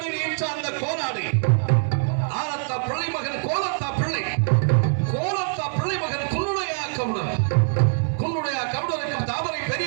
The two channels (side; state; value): left; silent; 63 dB below the other